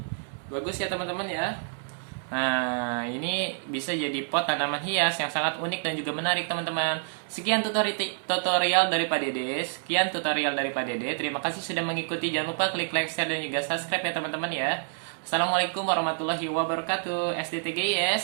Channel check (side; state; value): left; silent; 59 dB below the other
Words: Bagus ya teman-teman ya. Nah, ini bisa jadi pot tanaman hias yang sangat unik dan juga menarik teman-teman. Sekian tutorial dari Pak Dede. Sekian tutorial dari Pak Dede. Terima kasih sudah mengikuti. Jangan lupa klik like, share, dan juga subscribe ya teman-teman ya. Assalamualaikum warahmatullahi wabarakatuh.